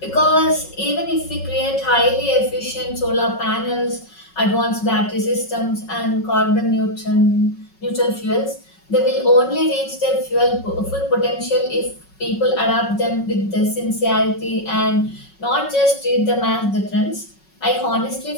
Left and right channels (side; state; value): right; late; 5.4 ms